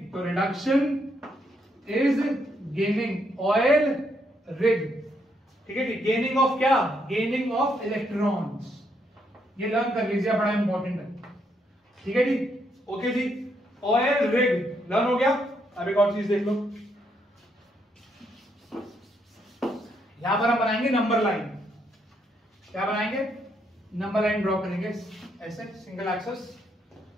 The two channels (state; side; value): normal; both; correlation 0.75